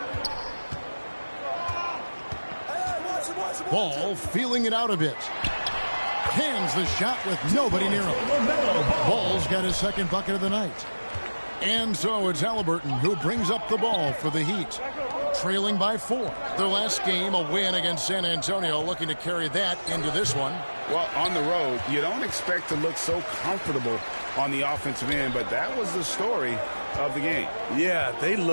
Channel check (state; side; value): inverted; both; correlation -1.00